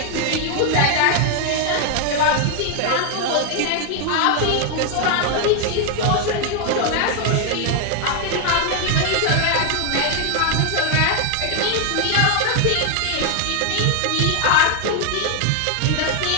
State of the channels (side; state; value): both; different; correlation 0.00